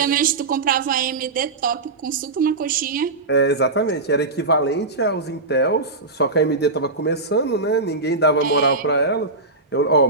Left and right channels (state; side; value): quieter; left; 3.4 dB